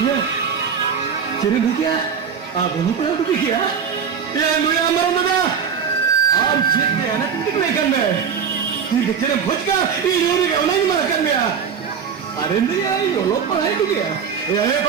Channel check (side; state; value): left; quieter; 6.8 dB